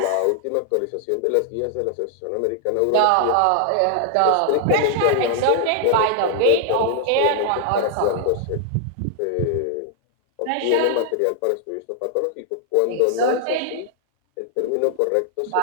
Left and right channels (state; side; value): different; both; correlation 0.00